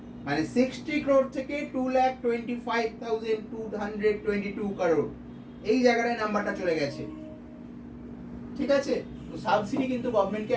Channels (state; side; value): identical; both; correlation 1.00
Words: মানে 60 crore থেকে 225,222 crore, এই জায়গাটায় নাম্বারটা চলে গেছে, ঠিক আছে। তো সাবসিডি কিন্তু গভর্নমেন্টকে